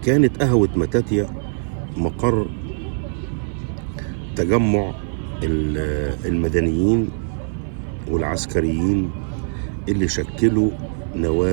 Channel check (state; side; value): silent; left; 56 dB below the other